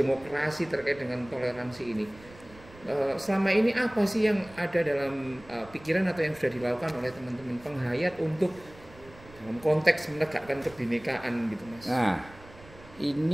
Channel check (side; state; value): right; noise; rumble, 21 dB below the sound